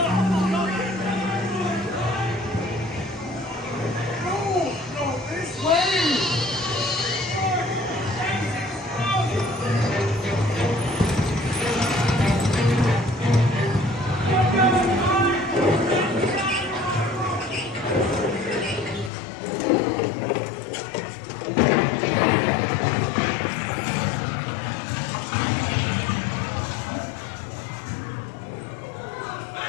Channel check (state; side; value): drops out; right; at 19.1 s